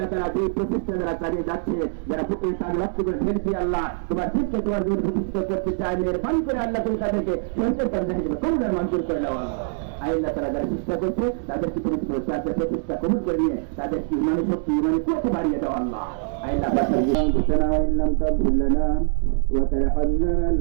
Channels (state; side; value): silent; left; digital silence